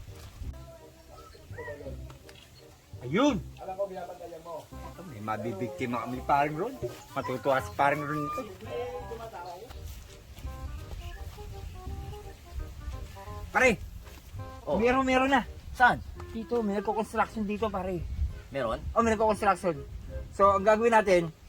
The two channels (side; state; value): both; identical; correlation 1.00